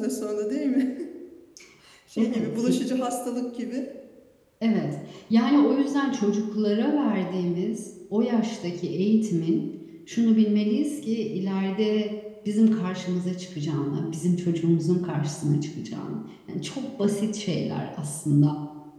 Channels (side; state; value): both; identical; correlation 1.00